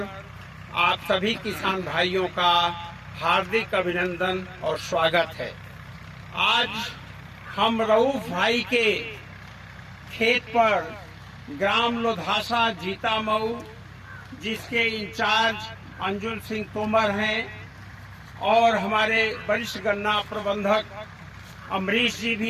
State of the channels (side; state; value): both; identical; correlation 1.00